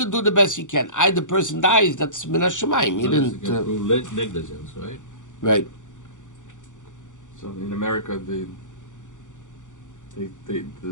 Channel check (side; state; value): right; late; 0.86 ms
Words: do the best you can. The person dies, that's min hashamayim. You didn't prove negligence, right? Right. So in America, the